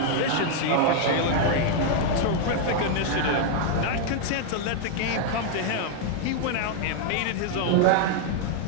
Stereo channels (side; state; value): both; different; correlation 0.00